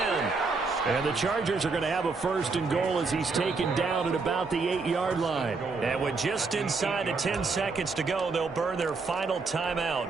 And the Chargers are going to have a 1st and goal as he's taken down at about the 8-yard line. And with just inside of 10 seconds to go, they'll burn their final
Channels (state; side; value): quieter; left; 4.3 dB